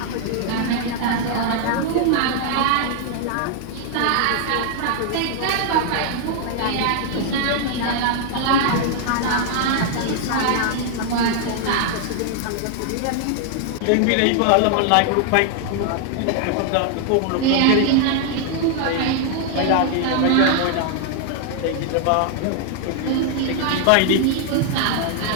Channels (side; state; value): both; different; correlation 0.00